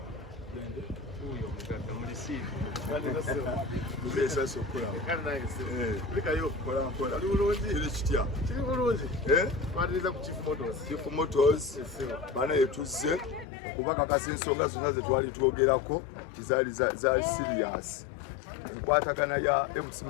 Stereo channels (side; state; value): right; drops out; at 13.5 s